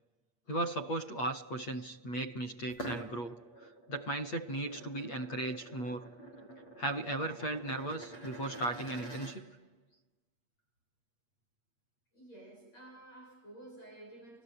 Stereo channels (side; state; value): right; late; 8.4 ms